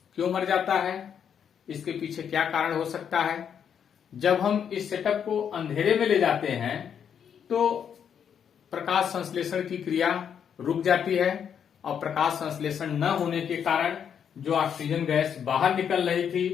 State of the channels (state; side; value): quieter; right; 8.0 dB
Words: क्यों मर जाता है? इसके पीछे क्या कारण हो सकता है? जब हम इस सेटअप को अंधेरे में ले जाते हैं तो प्रकाश संश्लेषण की क्रिया रुक जाती है और प्रकाश संश्लेषण न होने के कारण जो ऑक्सीजन गैस बाहर निकल रही